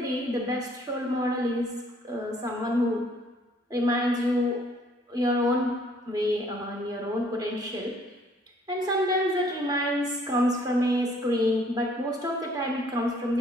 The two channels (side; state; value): both; normal; correlation 0.61